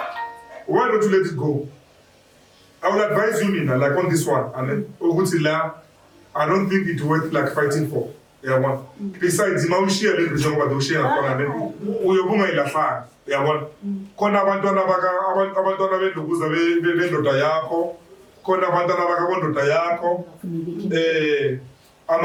why don't you let it go? I would advise you, Mina, like on this one, and I don't think it's worth like fighting for. Yeah, besides, you share a little bit about the share of Uyobuma ilafaa. Yeah, kona abantwana belukuza bendota yakho, kona abantwana bakabondota yakho,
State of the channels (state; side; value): identical; both; correlation 1.00